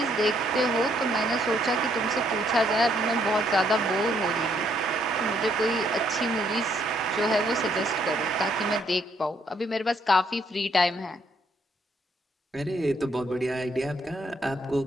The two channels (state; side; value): normal; both; correlation 0.70